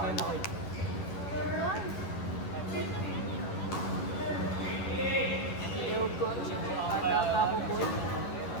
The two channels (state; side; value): late; right; 11 ms